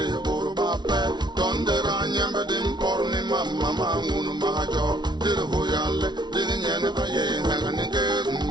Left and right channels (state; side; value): late; left; 0.20 ms